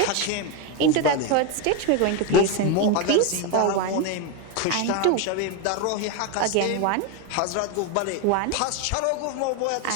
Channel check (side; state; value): both; different; correlation 0.02